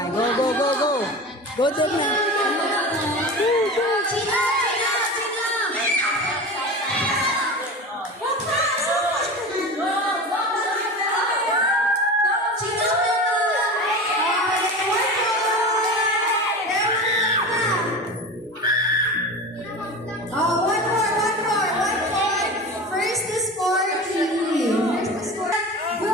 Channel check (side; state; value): both; normal; correlation 0.30